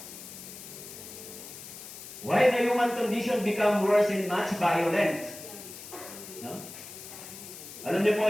Why the human condition become worse and much violent? No? Alam niyo po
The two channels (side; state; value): left; noise; hiss, 13 dB below the sound